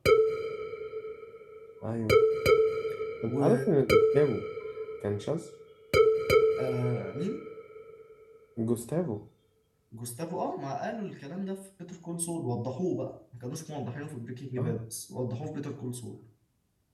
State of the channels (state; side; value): identical; both; correlation 1.00